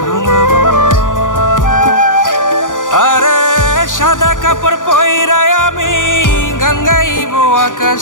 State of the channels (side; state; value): right; late; 0.88 ms